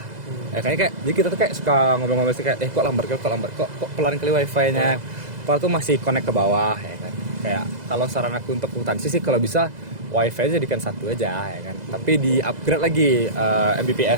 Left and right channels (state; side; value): late; left; 2.0 ms